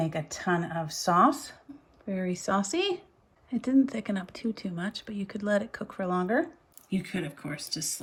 a ton of sauce, very saucy. It didn't thicken up too much, but you could let it cook for longer. You could, of course, just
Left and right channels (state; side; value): identical; both; correlation 1.00